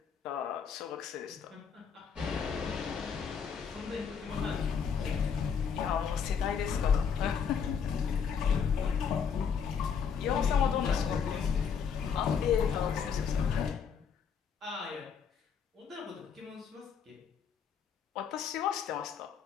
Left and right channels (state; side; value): quieter; right; 6.8 dB